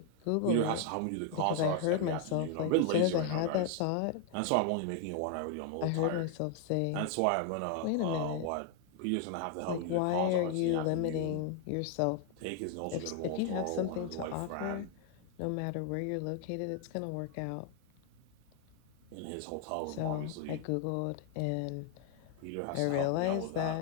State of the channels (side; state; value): both; different; correlation 0.00